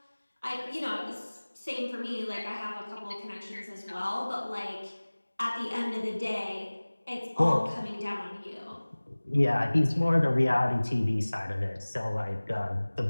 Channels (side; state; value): both; inverted; correlation -1.00